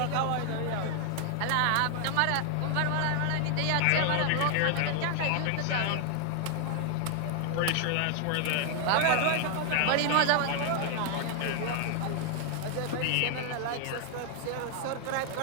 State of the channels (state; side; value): different; both; correlation 0.00